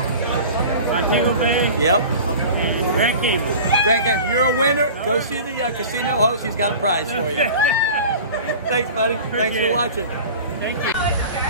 Montego Bay. Yep. And Grand Cayman. Grand Cayman. You're a winner. Go see the casino host. He's got a prize for you. Thanks, buddy. Thanks for watching. Thank you.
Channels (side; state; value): both; inverted; correlation -0.38